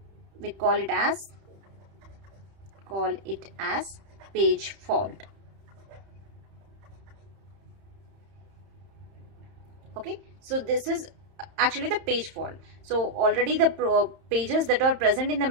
we call it as page fault. Okay, so this is actually the page fault. So already the pages that are present in the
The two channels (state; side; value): late; left; 31 ms